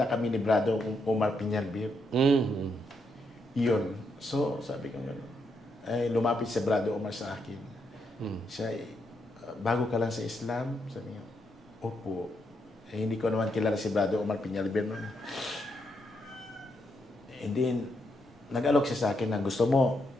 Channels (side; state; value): both; normal; correlation 0.79